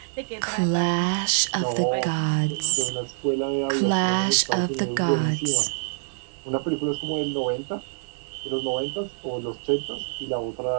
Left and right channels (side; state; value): left; silent; 57 dB below the other